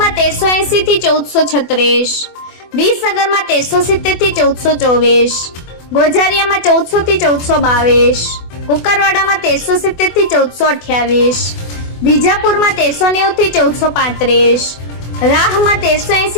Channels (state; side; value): late; right; 24 ms